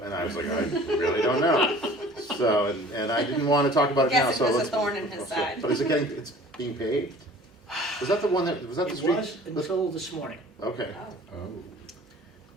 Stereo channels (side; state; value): both; normal; correlation 0.47